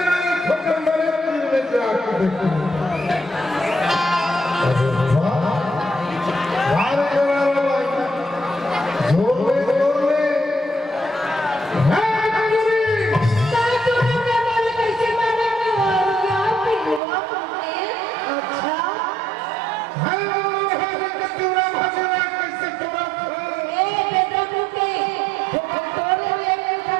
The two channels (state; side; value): drops out; left; at 17.0 s